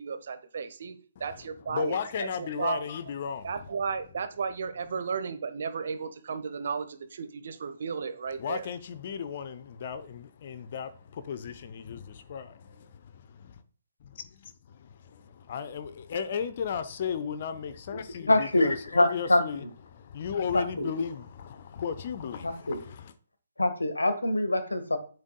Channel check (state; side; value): inverted; both; correlation -0.83